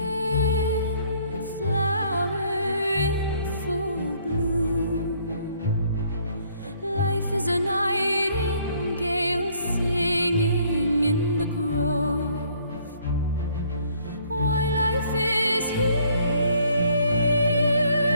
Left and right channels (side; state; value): both; inverted; correlation -0.63